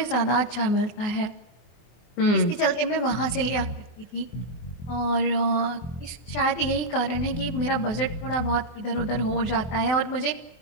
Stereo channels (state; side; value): late; right; 24 ms